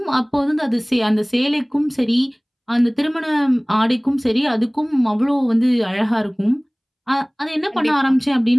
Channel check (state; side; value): identical; both; correlation 1.00